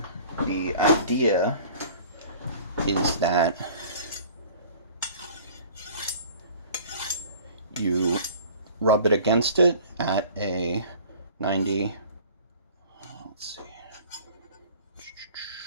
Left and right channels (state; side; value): inverted; both; correlation -0.47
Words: idea is that you rub it against it at a 90, let's see,